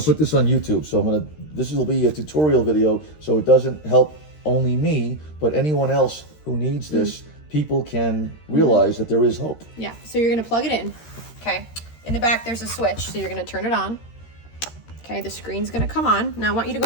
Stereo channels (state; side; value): late; right; 13 ms